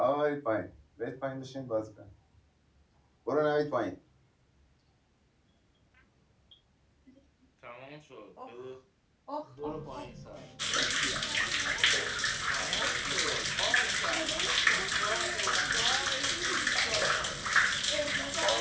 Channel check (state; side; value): identical; both; correlation 1.00